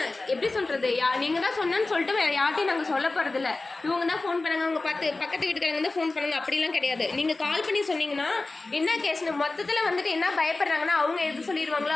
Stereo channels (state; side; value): quieter; right; 3.3 dB